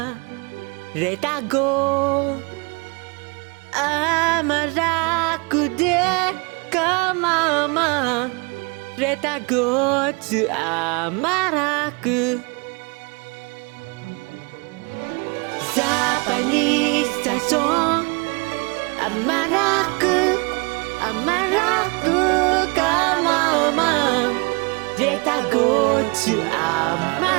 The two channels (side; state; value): left; quieter; 30.3 dB